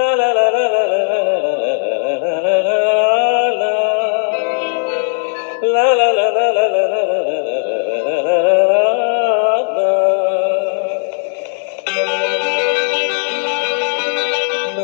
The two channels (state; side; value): silent; right; digital silence